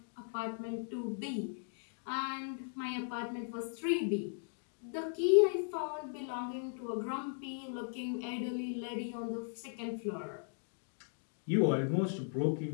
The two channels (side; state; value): right; silent; digital silence